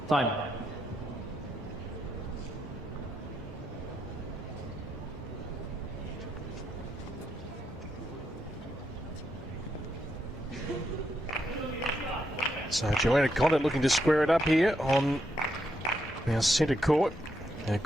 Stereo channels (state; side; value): normal; both; correlation 0.80